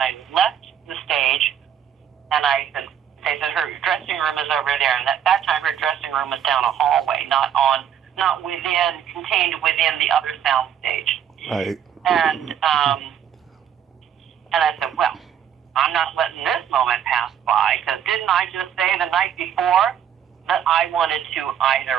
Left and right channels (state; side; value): quieter; left; 9.1 dB